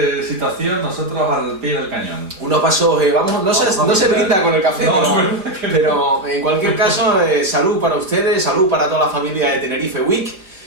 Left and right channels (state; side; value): late; left; 5.0 ms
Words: situación, nosotros al pie del cañón. Unos pasos, no se brinda con el café, no, pero en cualquier caso, salud para ustedes, salud para toda la familia de Tenerife Week.